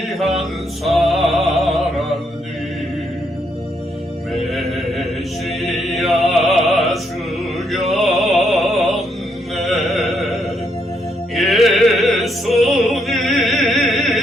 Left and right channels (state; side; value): normal; both; correlation 0.76